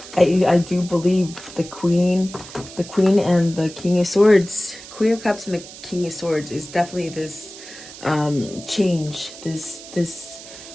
do believe the queen and the king of swords, queen of cups and the king of swords is definitely this change, this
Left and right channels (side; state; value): right; noise; hiss, 15 dB below the sound